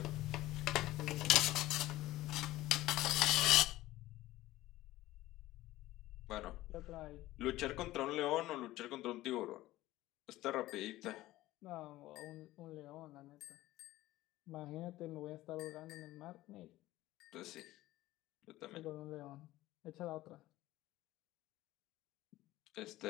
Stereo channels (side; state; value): right; quieter; 16.5 dB